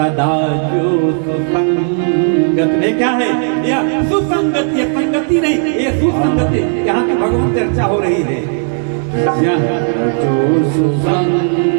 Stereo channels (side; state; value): left; silent; 65 dB below the other